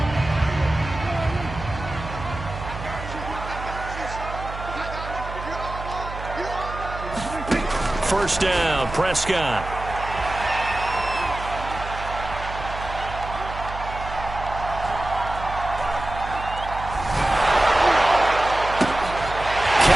First down, Prescott.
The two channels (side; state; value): right; noise; hum, 9 dB below the sound